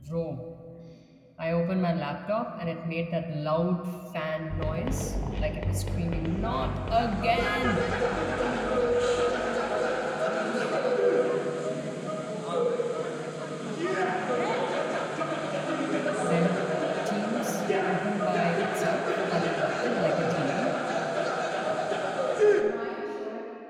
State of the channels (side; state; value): both; identical; correlation 1.00